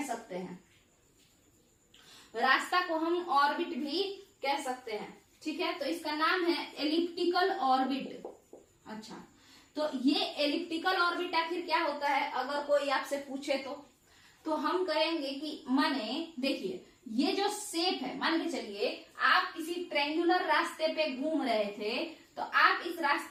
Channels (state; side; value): identical; both; correlation 1.00